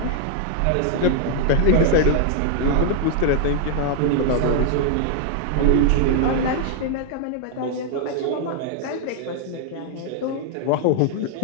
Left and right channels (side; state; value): both; different; correlation 0.00